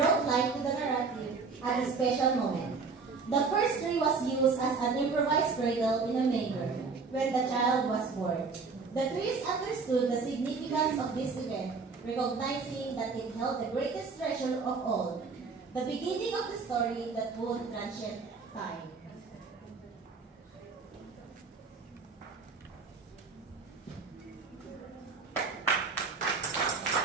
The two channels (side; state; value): left; quieter; 4.7 dB